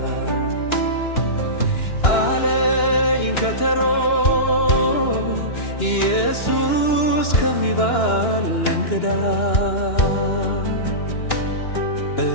አለኝ ከተሮ ኢየሱስ ከሚባል እንግዳ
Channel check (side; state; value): right; late; 2.9 ms